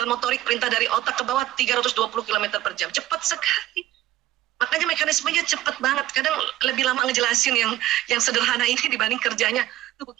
motorik perintah dari otak ke bawah 320 km per jam. Cepat sekali. Makanya mekanismenya cepat banget. Kadang lebih lama ngejelasin yang sederhana ini dibanding kerjanya tubuh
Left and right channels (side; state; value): left; quieter; 14.6 dB